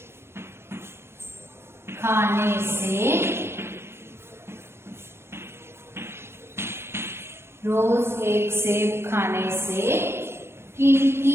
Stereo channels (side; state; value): left; late; 0.12 ms